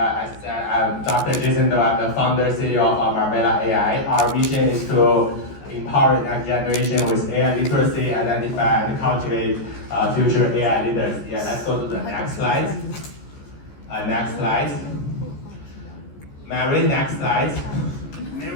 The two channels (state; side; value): late; right; 14 ms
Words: I said, I'm Dr. Jason Do. I'm the founder, CEO of Marbella AI. Our mission is to empower the next generation with AI literacy, identify and cultivate future AI leaders. Yeah, let's go to the next slide. Next slide. Mary, next slide.